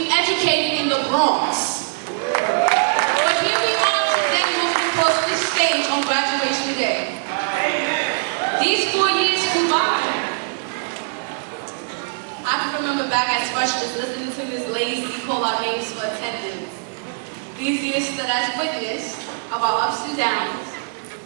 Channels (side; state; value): left; silent; 64 dB below the other